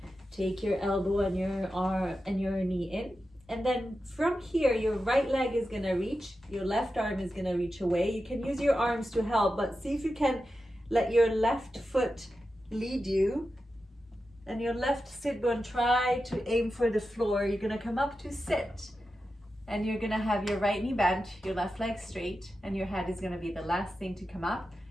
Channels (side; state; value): both; normal; correlation 0.91